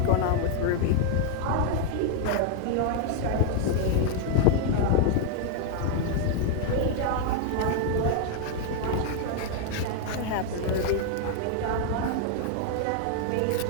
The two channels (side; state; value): both; different; correlation 0.00